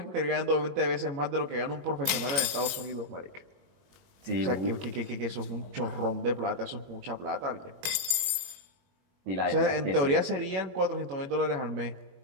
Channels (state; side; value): late; left; 21 ms